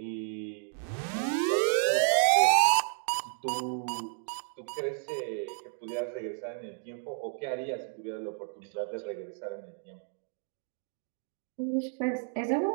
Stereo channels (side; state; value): left; silent; 57 dB below the other